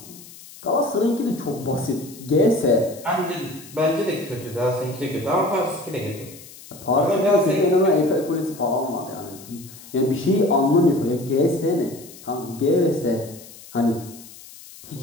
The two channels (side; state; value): left; noise; hiss, 19 dB below the sound